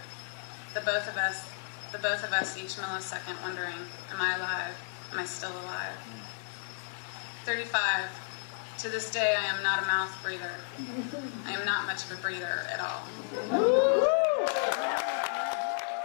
The both of us each millisecond wondering, am I alive? Am I still alive? 35. To this day, I am not a mouth breather. I am not much of a breather at all.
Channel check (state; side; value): silent; right; 56 dB below the other